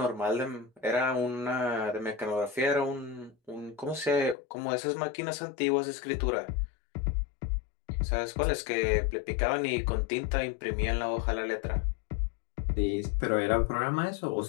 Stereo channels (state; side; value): drops out; right; at 4.4 s